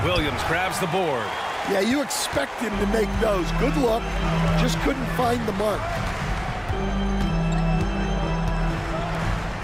Williams grabs the board. Yeah, you expect him to make those. Good luck. Just couldn't find the mark.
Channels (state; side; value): identical; both; correlation 1.00